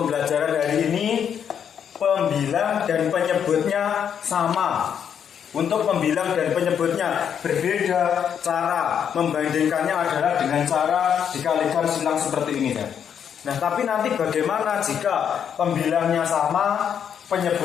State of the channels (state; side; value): quieter; right; 8.2 dB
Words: hari ini pembilang dan penyebutnya sama. Untuk pembilang dan penyebutnya berbeda. Cara membandingkannya adalah dengan cara dikalikan silang seperti ini kan. Nah, tapi nanti bagaimana jika pembilangnya sama,